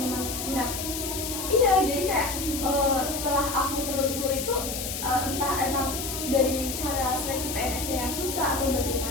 Nah, iya, jadi kayak setelah aku telusuri itu entah emang dari cara seleksi PNS-nya yang susah atau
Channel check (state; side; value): noise; left; hiss, 5 dB below the sound